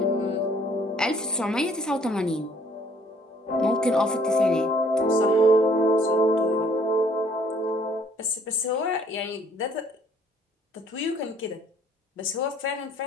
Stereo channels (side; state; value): both; normal; correlation 0.61